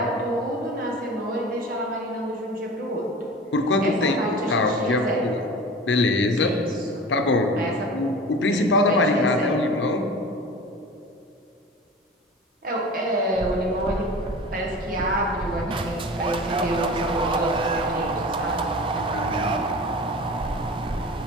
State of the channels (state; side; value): normal; both; correlation 0.37